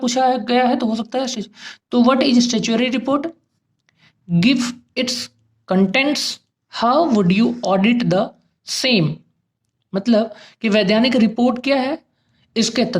गया है तो हो सकता है, तो what is statutory report, give its contents, how would you audit the same. मतलब कि वैधानिक रिपोर्ट क्या है, इसके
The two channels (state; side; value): identical; both; correlation 1.00